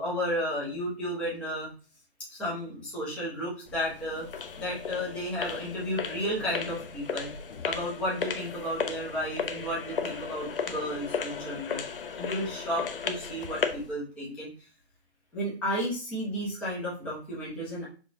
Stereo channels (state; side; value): normal; both; correlation 0.15